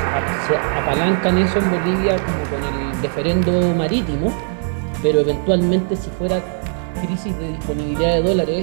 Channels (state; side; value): silent; left; digital silence